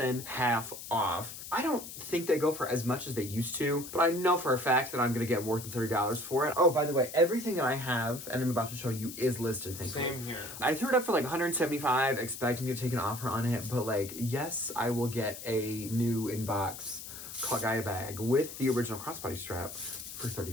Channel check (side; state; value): left; noise; hiss, 11 dB below the sound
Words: half off. I don't think they go for as much as they used to, but I know for a fact that I'm going to get more than $30 for it. Oh, by the way, everything that I have, and I'm about to show you, is listed, thankfully. Same here. I threw it up for like $175, expecting to take an offer on it, but like, yes, I will get a new inbox Cult Gaia bag with the original crossbody strap for